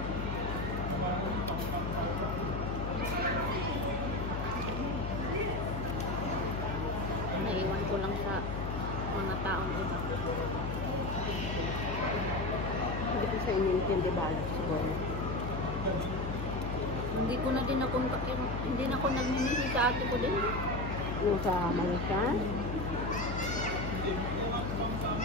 Naiwan ko lang sa mga taong iba. Hindi ko sa inintindi ba siguro. Hindi ko na din hindi na ako nagmimisi sa ate ko din. Yung sa Malaysia.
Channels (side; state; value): left; noise; hum, 4 dB below the sound